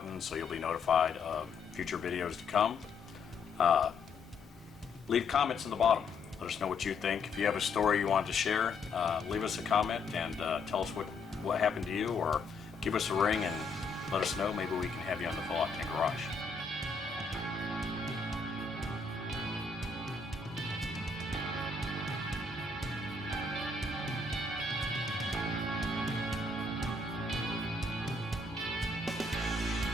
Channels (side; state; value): right; quieter; 3.9 dB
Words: so you'll be notified of future videos to come. Leave comments in the bottom. Let us know what you think. If you have a story you want to share, leave us a comment and tell us what happened to you, or give us a ring and let us know. Maybe we can have you on the full Octane Garage.